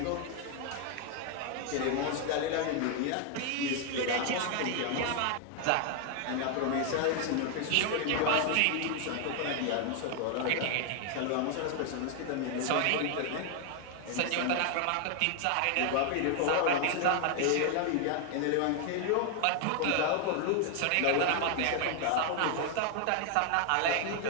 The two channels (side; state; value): both; different; correlation 0.01